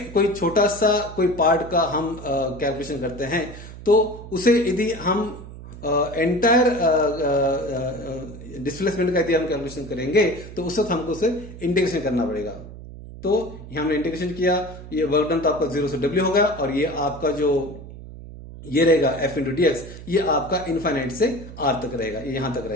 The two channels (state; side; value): noise; right; hum, 14 dB below the sound